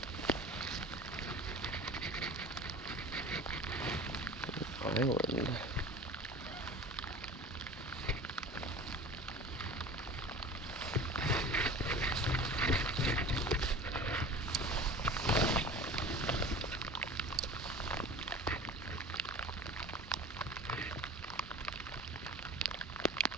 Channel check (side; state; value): both; normal; correlation 0.38